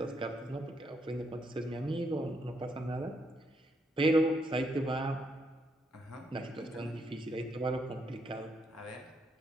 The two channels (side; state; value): both; normal; correlation 0.77